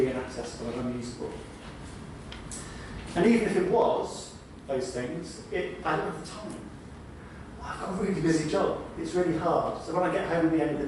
inaccessible and unusable. And even if it was those things, I don't have the time. I've got a really busy job. It's really hard. So when I get home at the end of the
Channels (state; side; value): identical; both; correlation 1.00